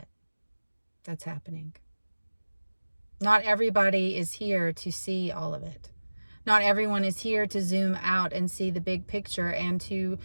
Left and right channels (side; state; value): both; inverted; correlation -1.00